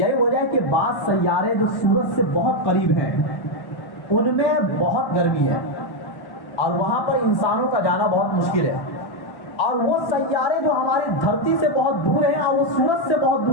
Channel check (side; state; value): right; late; 1.1 ms